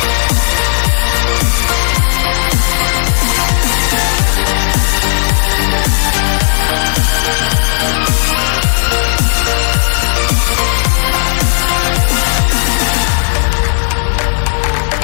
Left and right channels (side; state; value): right; silent; digital silence